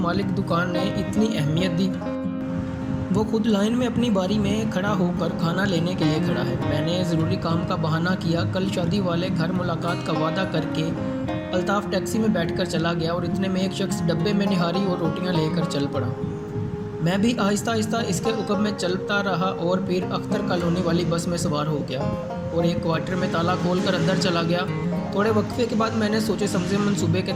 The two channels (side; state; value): both; identical; correlation 1.00